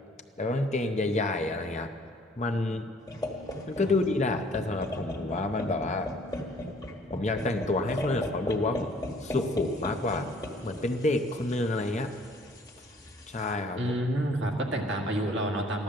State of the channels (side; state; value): both; normal; correlation 0.58